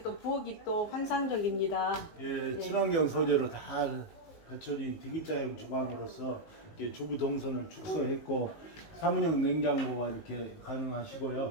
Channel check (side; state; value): right; late; 19 ms